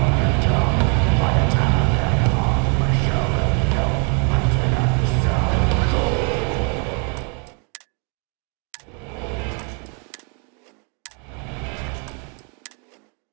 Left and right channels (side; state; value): left; quieter; 38.0 dB